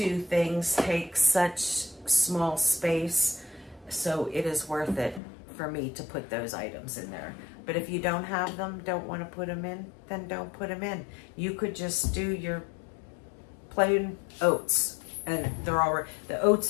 things take such small space, so it is worth it for me to put those items in there. But if you don't have them, don't want to put them in, then don't put them in. You could just do your plain oats, and they're already, the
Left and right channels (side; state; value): right; drops out; at 5.2 s